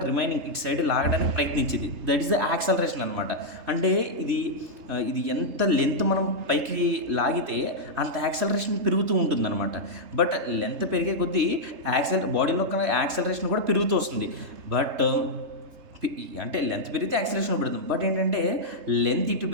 రిమైనింగ్ ఇటు సైడ్ లాగడానికి ప్రయత్నించింది. దట్ ఈస్ ద యాక్సలరేషన్ అనమాట. అంటే ఇది ఎంత లెంత్ మనం పైకి లాగితే అంత యాక్సలరేషన్ పెరుగుతూ ఉంటుంది అనమాట. బట్ లెంత్ పెరిగే కొద్దీ బాడీలో యాక్సలరేషన్ కూడా పెరుగుతూ వస్తుంది. బట్ అంటే లెంత్ పెరిగితే యాక్సలరేషన్ పెడుతుంది. బట్ ఏంటంటే లెంత్ ఇటు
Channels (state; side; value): late; left; 3.3 ms